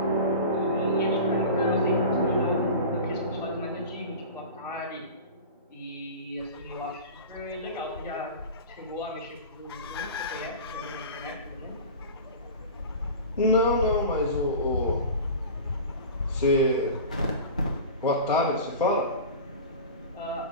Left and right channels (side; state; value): both; inverted; correlation -0.34